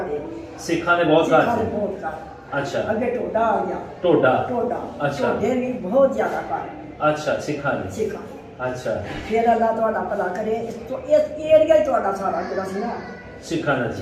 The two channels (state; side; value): identical; both; correlation 1.00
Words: ਸਿੱਖਾਂ ਦੇ ਬਹੁਤ ਘਰ ਸਿੱਖਾਂ ਦੇ ਸੀ। ਬਹੁਤ ਘਰ। ਅੱਛਾ ਅੱਗੇ ਟੋਡਾ ਆ ਗਿਆ। ਟੋਡਾ। ਟੋਡਾ ਅੱਛਾ। ਟੋਡੇ ਵੀ ਬਹੁਤ ਜ਼ਿਆਦਾ ਘਰ ਅੱਛਾ ਸਿੱਖਾਂ ਦੇ। ਸਿੱਖਾਂ। ਅੱਛਾ ਫਿਰ ਅੱਲਾ ਤੁਹਾਡਾ ਭਲਾ ਕਰੇ। ਇਸ ਏਰੀਆ ਹੀ ਤੁਹਾਡਾ ਸਾਰਾ ਜਿਹੜਾ ਸੀ ਨਾ ਸਿੱਖਾਂ ਦਾ